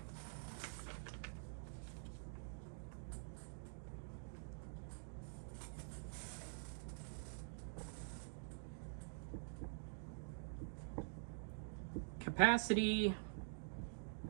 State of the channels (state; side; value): silent; left; digital silence